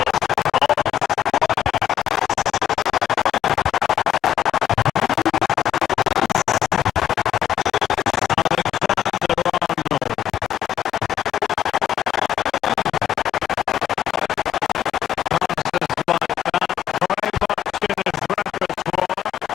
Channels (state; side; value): quieter; right; 10.7 dB